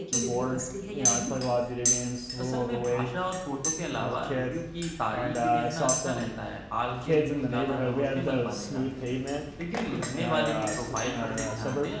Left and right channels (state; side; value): identical; both; correlation 1.00